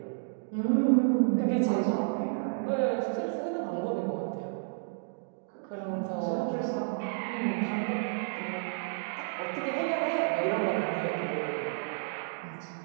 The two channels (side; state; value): left; silent; digital silence